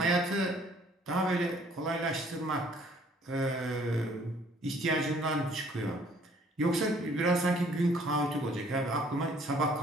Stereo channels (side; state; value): both; normal; correlation 0.59